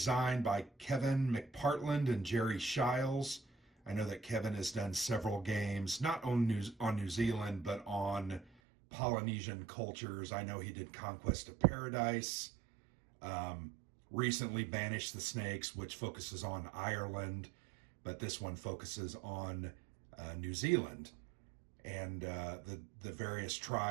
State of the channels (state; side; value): drops out; left; at 8.6 s